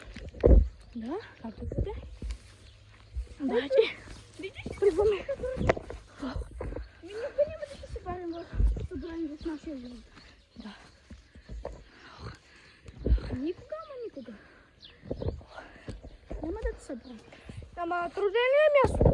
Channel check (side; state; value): both; identical; correlation 1.00